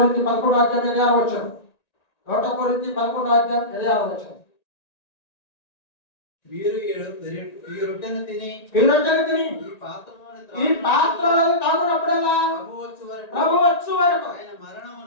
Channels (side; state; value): right; late; 1.9 ms